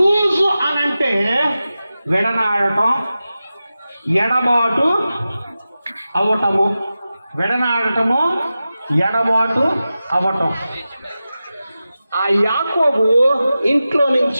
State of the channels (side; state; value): both; inverted; correlation -0.94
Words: అనంటే విడనాడటం, ఎడబాటు అవటము. విడనాడటము, ఎడబాటు అవటం. ఆ యాకోబు ఇంట్లో